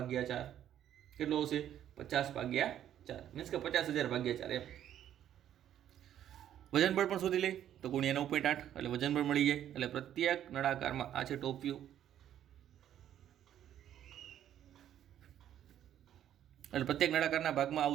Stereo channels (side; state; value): left; quieter; 10.8 dB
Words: કેટલું હશે? 50/4 મીન્સ કે 50,000/4 એમ. વજન બળ પણ શોધી લે તો ગુણ્યા 9.8 એટલે વજન બળ મળી જાય. એટલે પ્રત્યેક નળાકારમાં આ છે ટોપ વ્યૂ, એટલે પ્રત્યેક નળાકારના ભાગમાં